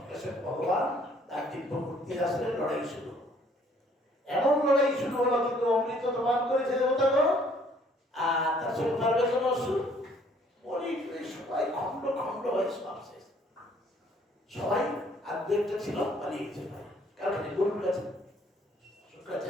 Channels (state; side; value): normal; both; correlation 0.61